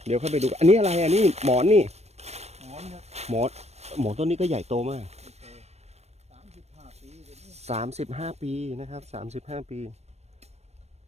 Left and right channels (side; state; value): left; late; 0.31 ms